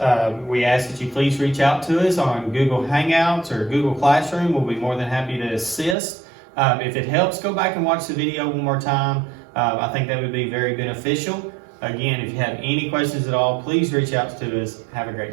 we ask that you please reach out to us on Google Hangouts or Google Classroom. We'll be more than happy to assist. If it helps, go back and watch the video one more time. I think that would be very beneficial. Again, if you have any questions at all, please reach out to us. Have a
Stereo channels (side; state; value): left; drops out; at 6.0 s